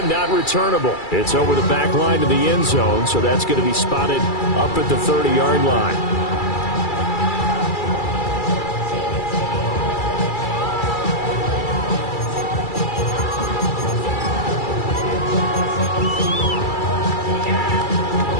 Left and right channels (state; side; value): late; right; 2.3 ms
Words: not returnable. It's over the back line to the end zone, so that's going to be spotted up at the 30-yard line.